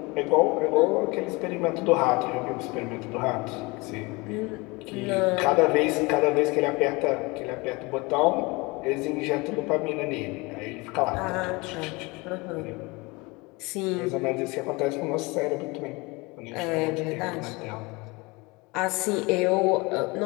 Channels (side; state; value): right; quieter; 25.2 dB